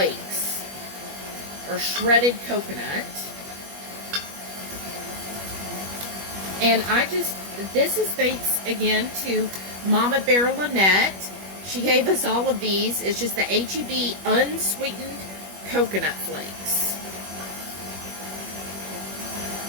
or shredded coconut. And this is thanks again to Mama Bear Lynette. She gave us all of these. It's just the H-E-B unsweetened coconut flakes.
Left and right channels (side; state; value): left; late; 21 ms